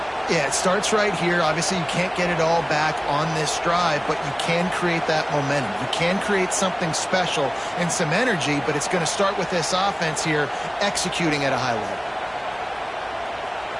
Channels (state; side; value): identical; both; correlation 1.00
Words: Yeah, it starts right here. Obviously, you can't get it all back on this drive, but you can create that momentum. You can create something special and some energy, but it's going to start with this offense here executing at a high level.